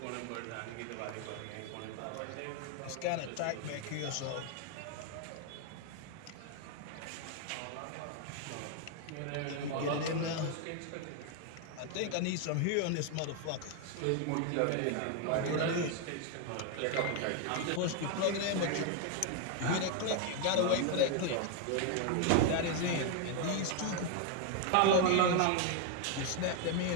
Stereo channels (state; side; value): different; both; correlation 0.01